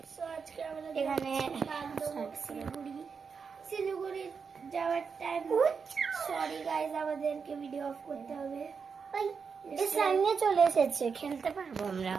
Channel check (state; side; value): quieter; left; 5.7 dB